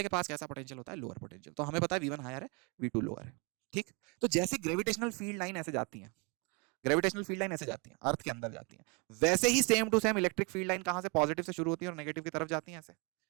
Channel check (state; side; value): quieter; left; 32.0 dB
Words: के पास कैसा पोटेंशियल होता है, लोअर पोटेंशियल। तो हमें पता है V1 हायर है, V2 लोअर है, ठीक। तो जैसे ग्रेविटेशनल फील्ड लाइन ऐसे जाती है, ग्रेविटेशनल फील्ड लाइन ऐसे जाती है, अर्थ के अंदर जाती है, वैसे ही same to same electric field line कहां से, पॉजिटिव से शुरू होती है और नेगेटिव की तरफ जाती है ऐसे।